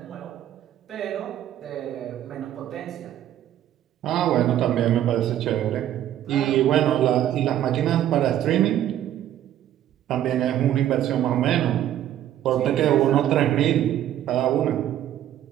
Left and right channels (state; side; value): quieter; left; 11.7 dB